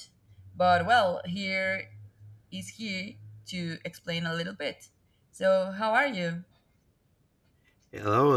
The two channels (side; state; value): both; identical; correlation 1.00